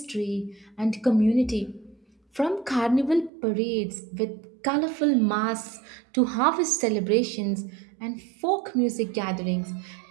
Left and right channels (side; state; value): left; drops out; at 3.3 s